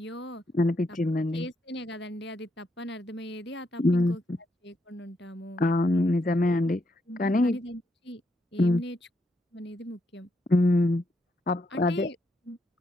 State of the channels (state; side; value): normal; both; correlation 0.79